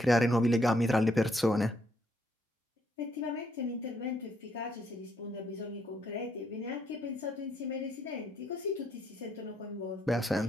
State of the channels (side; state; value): both; normal; correlation 0.73